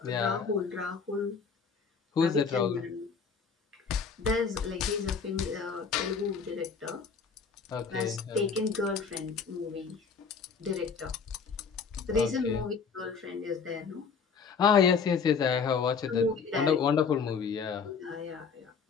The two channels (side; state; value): right; quieter; 5.7 dB